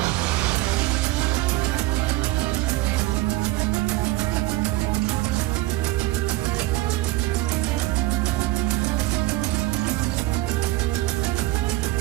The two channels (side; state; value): left; quieter; 18.2 dB